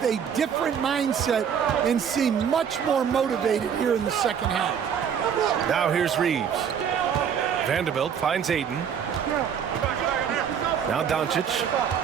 a different mindset and seem much more motivated here in the second half. Now here's Reeves. Vanderbilt finds Ayton. Now Doncic.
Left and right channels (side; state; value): left; quieter; 7.8 dB